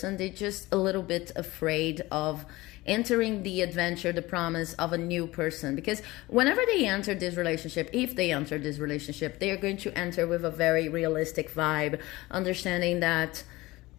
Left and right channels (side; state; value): right; quieter; 19.9 dB